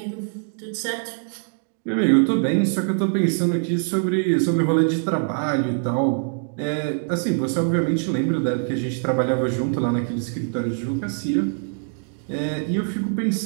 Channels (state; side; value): silent; left; 57 dB below the other